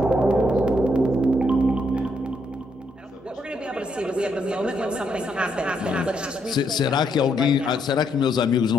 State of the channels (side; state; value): both; normal; correlation 0.76